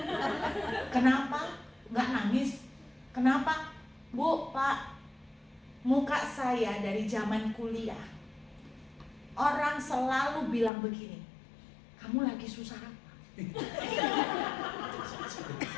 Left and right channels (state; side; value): drops out; right; at 10.7 s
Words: Kenapa? Nggak nangis. Kenapa? Bu, Pak, muka saya dari zaman kuliah, orang selalu bilang begini, kamu lagi susah apa?